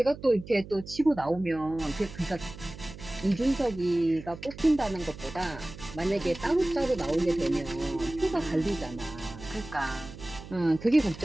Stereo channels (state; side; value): noise; right; hum, 15 dB below the sound